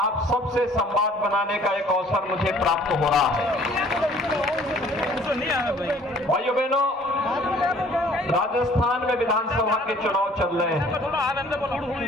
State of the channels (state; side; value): normal; both; correlation 0.55